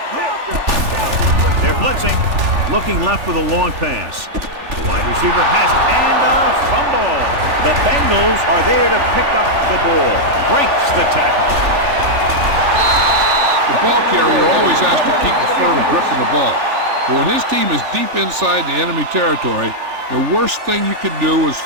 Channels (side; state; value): left; late; 3.4 ms